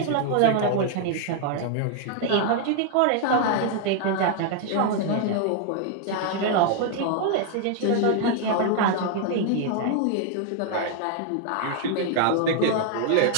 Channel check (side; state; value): both; different; correlation 0.00